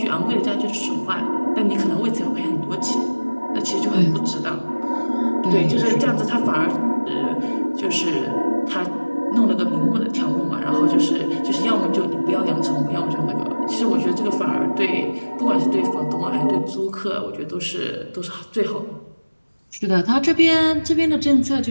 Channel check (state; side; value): inverted; both; correlation -1.00